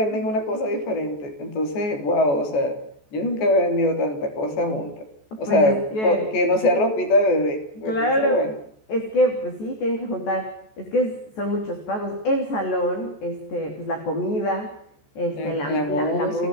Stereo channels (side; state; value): right; late; 14 ms